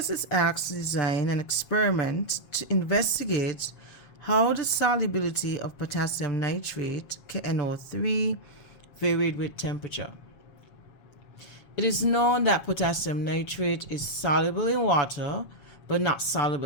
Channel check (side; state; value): right; late; 7.2 ms